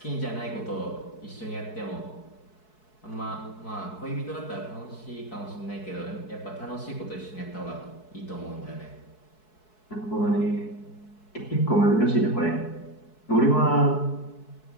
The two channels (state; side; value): late; right; 4.7 ms